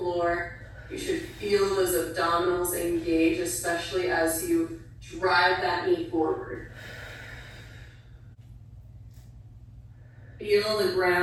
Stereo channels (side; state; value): both; identical; correlation 1.00